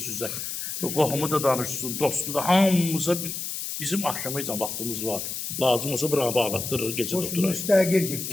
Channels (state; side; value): noise; left; hiss, 5 dB below the sound